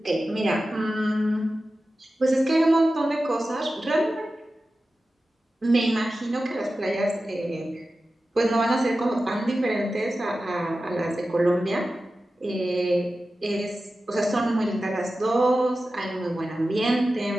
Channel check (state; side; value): normal; both; correlation 0.94